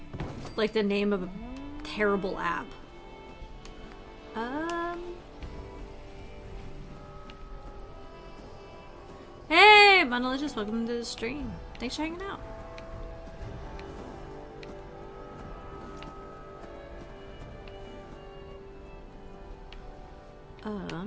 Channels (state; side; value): identical; both; correlation 1.00